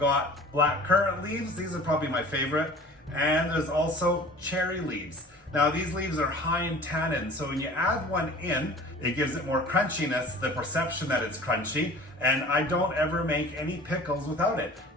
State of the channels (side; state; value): both; normal; correlation 0.44